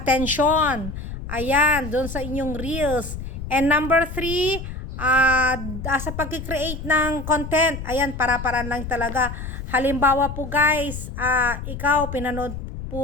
Ayan, doon sa inyong reels. And number 3, sa pag-create ng content, ayan, para-paraan lang talaga. Halimbawa po guys, ikaw, pinanood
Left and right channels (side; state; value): left; noise; rumble, 8 dB below the sound